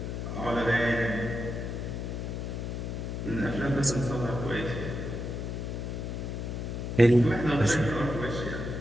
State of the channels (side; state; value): left; noise; hum, 4 dB below the sound